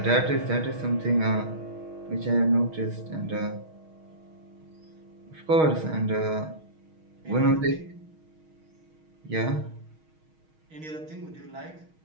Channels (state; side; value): late; left; 6.4 ms